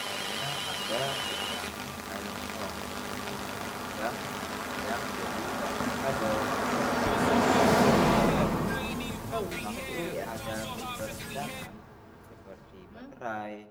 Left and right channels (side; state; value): both; identical; correlation 1.00